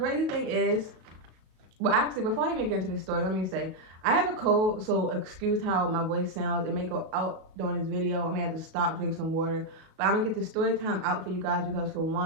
thing is, well actually before I even get into the story, let me say, I have a cold, so excuse how my voice sounds. It may go out during this video. I may have to stop, drink some water, but I'm gonna get the story time out for you guys because for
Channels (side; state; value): left; late; 37 ms